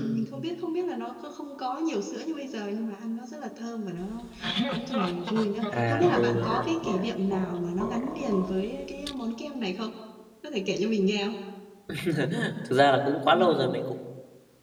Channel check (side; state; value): both; identical; correlation 1.00